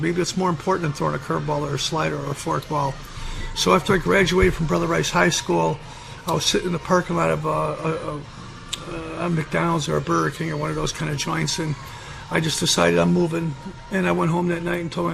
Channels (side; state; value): both; identical; correlation 1.00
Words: it's more important than throwing a curveball or a slider or a forkball. So after I graduated from Brother Rice High School, I was sitting in the parking lot of a McDonald's or a Burger King or one of those kind of joints, and I just decided I'm moving. And I went home that night and told my